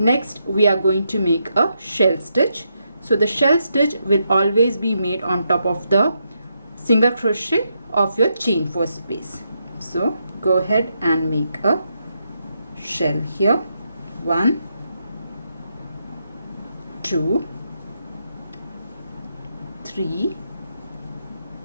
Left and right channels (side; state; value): both; inverted; correlation -0.81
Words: we are going to make a shell stitch. So the shell stitch will always be made on top of the single crochet of your chain 4 space. So go ahead and make a shell here. 1, 2, 3,